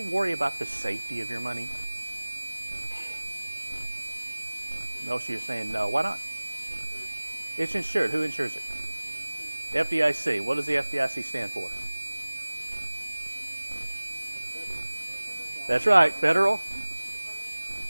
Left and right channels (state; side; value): inverted; both; correlation -1.00